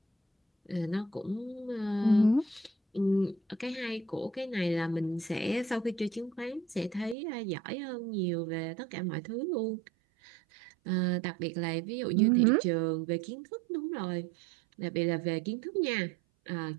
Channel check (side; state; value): left; drops out; at 7.2 s